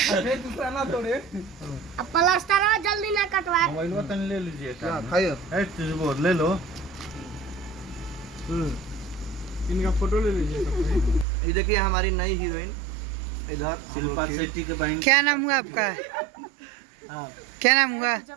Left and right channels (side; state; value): left; drops out; at 11.2 s